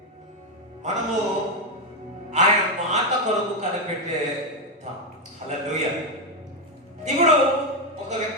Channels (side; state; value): both; normal; correlation 0.06